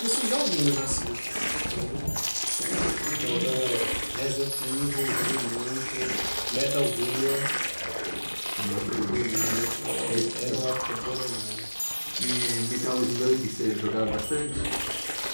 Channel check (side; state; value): both; inverted; correlation -1.00